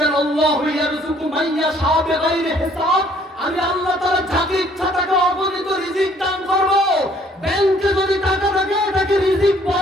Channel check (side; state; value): both; normal; correlation 0.61